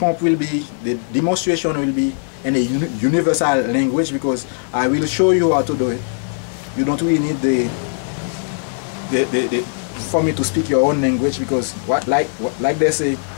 will be, the demonstration will be in a universal language, because I will show you how to do it. You don't really need for me to speak your own language, because like they say,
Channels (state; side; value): silent; right; digital silence